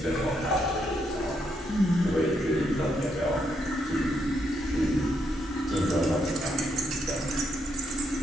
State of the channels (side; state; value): both; normal; correlation 0.77